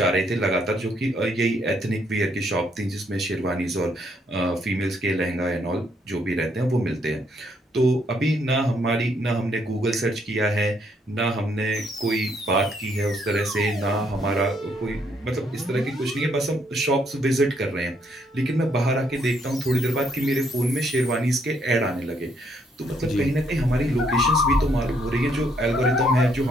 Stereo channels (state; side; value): normal; both; correlation 0.71